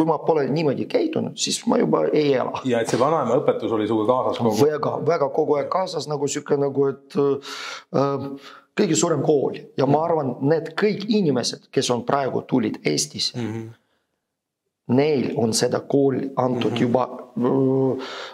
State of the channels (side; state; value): both; identical; correlation 1.00